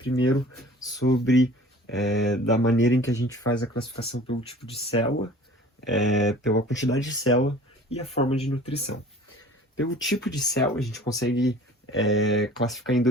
sobre da maneira em que a gente faz a classificação pelo tipo de célula, pela quantidade de célula e a forma de nutrição. Pelo tipo de célula, a gente consegue classificar em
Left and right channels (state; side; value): normal; both; correlation 0.46